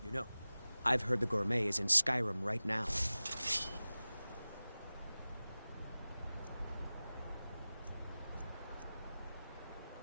You know, I've heard the gourmet is in Skyrim right now.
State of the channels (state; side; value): inverted; both; correlation -0.97